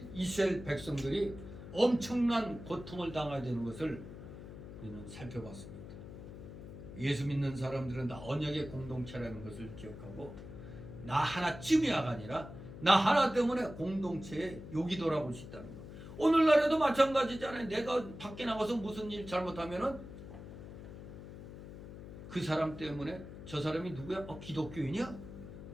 이스라엘 백성들이 엄청난 고통을 당하게 되는 것을 우리는 살펴봤습니다. 예수 믿는 사람들은 다 언약의 공동체라는 것을 기억하고 나 하나쯤이야가 아니라 나 하나 때문에 공동체에 욕이 돌아올 수 있다는 것. 오늘날에도 마찬가지잖아요. 내가 밖에 나가서 무슨 일 잘못하면은 그 사람 때문에 저 사람이 누구야? 기독교인이야?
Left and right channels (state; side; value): noise; left; hum, 12 dB below the sound